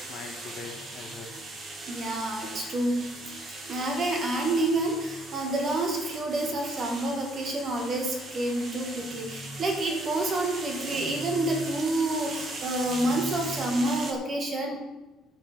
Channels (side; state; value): both; normal; correlation 0.67